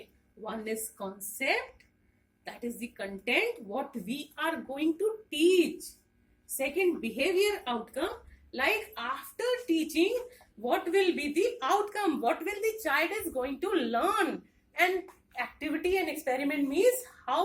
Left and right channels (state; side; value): identical; both; correlation 1.00